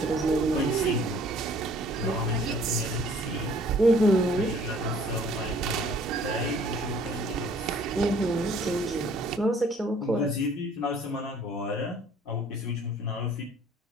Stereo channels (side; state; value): both; normal; correlation 0.56